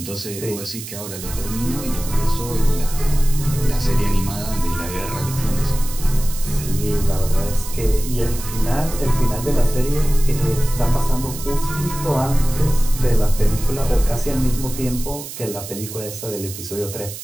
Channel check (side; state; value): right; noise; hiss, 11 dB below the sound